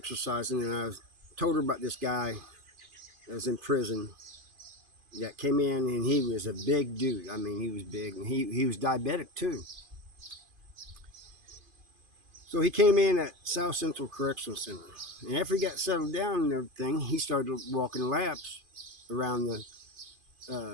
and told her about this guy that was in prison that came in, and he was a big dude. I mean, he was big, and he was diabetic too. So he came in at South Central Correctional Center, and after he got settled down and everything, he started walking laps around the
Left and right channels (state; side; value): late; left; 2.5 ms